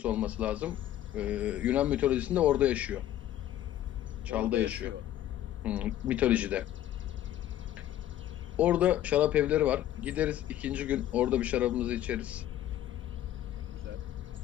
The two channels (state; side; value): quieter; right; 12.6 dB